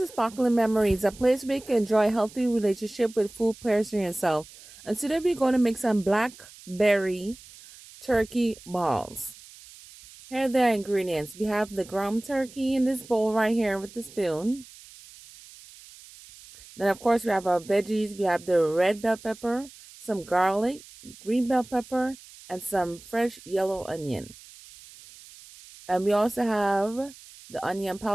Sparkling Memories, a place where you can enjoy a healthy relationship with food pairs for yourself. And today we're going to make some blackberry turkey balls. Here are the ingredients. We have the ground turkey in this bowl right here with the spoon. Then of course we have our veggies. We have the red bell pepper, some garlic, green bell pepper, and some fresh yellow onion. And we also have the onion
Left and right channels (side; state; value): right; noise; hiss, 20 dB below the sound